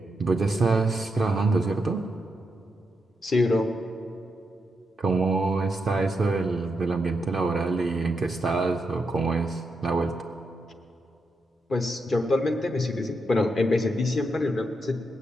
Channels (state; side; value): normal; both; correlation 0.83